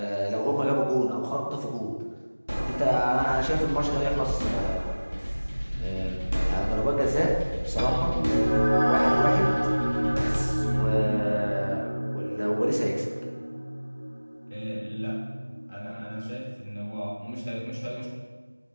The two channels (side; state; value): both; inverted; correlation -1.00